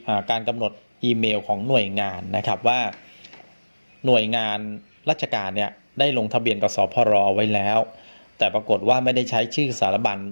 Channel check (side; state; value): both; inverted; correlation -1.00